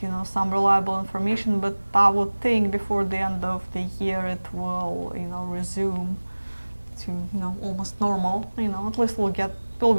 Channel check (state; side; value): inverted; both; correlation -1.00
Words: some reliable information. But I would think before the end of the year it will resume to almost normal. At least it'll